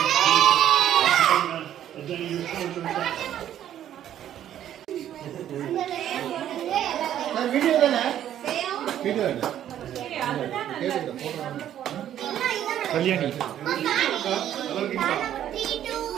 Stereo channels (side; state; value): left; quieter; 11.0 dB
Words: வீடியோ தானே? வீடியோ இல்ல Kalyani.